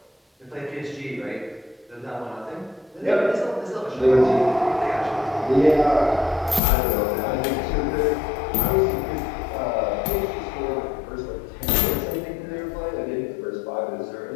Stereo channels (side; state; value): right; drops out; at 6.6 s